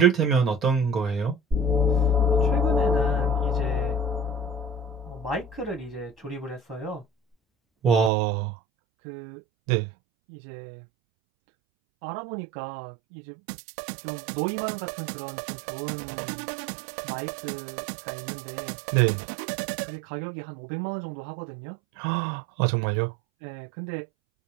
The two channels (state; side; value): drops out; left; at 8.1 s